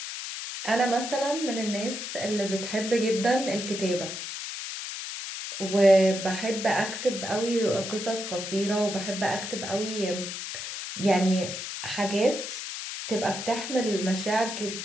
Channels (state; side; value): noise; left; hiss, 6 dB below the sound